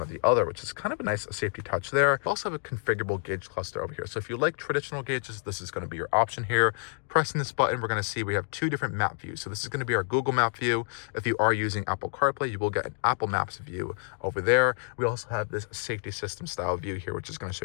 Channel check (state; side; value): silent; right; digital silence